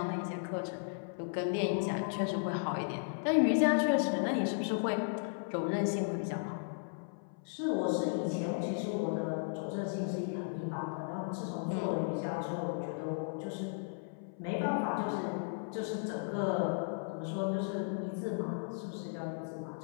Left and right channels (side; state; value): right; silent; 54 dB below the other